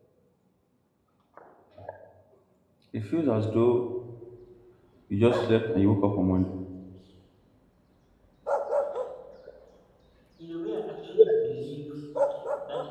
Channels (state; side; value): identical; both; correlation 1.00